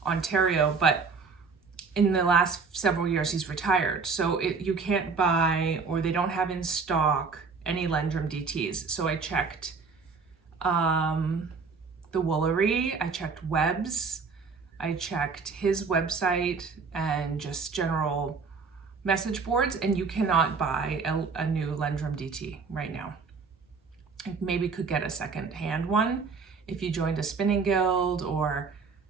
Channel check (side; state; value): left; quieter; 4.9 dB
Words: Ontario, but in the last several years he's retired. So you can't buy, or they don't have in stock, any Lendrum DTs. So I checked the Woolery, I checked Webb's, I checked his website and just general message boards, and you cannot buy a new Lendrum DT right now. You maybe could get a second-hand one if you joined a spinning guild or